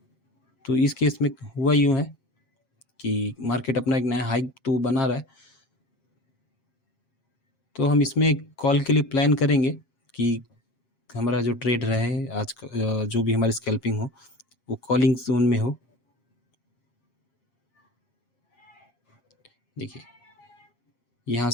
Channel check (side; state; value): right; late; 8.4 ms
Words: तो इस केस में हुआ यूँ है कि मार्केट अपना एक नया हाइक तो बना रहा है, तो हम इसमें एक कॉल के लिए प्लान करेंगे कि हमारा जो ट्रेड रहे आज का, जो भी हमारी स्कैल्पिंग हो वो कॉलिंग जोन में हो। देखिए यहाँ